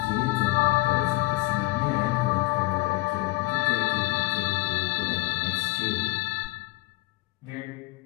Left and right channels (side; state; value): right; quieter; 21.0 dB